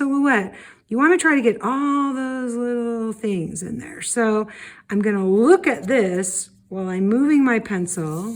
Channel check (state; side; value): identical; both; correlation 1.00